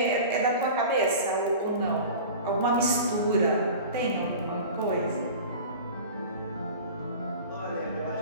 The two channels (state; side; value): inverted; both; correlation -0.37